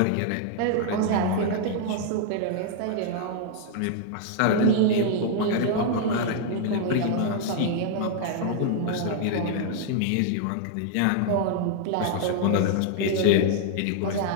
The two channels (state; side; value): different; both; correlation -0.01